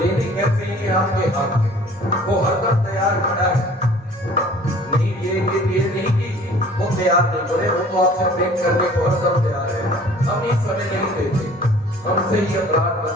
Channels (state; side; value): normal; both; correlation 0.50